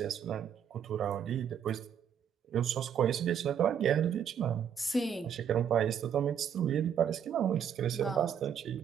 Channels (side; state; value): left; quieter; 8.4 dB